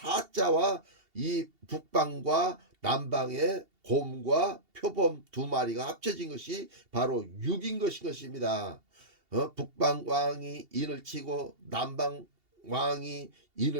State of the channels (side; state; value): left; late; 2.8 ms